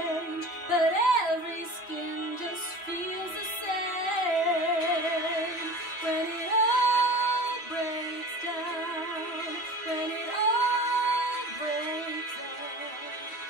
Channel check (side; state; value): right; late; 2.8 ms